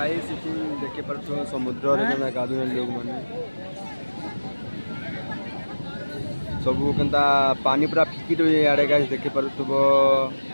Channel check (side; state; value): both; inverted; correlation -1.00